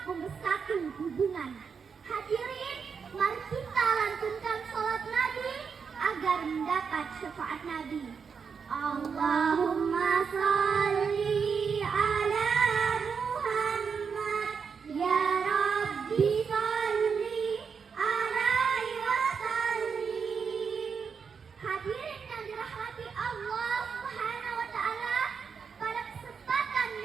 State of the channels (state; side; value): quieter; left; 6.1 dB